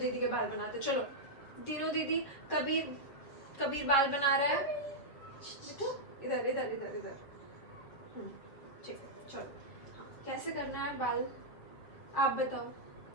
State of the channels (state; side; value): late; right; 7.4 ms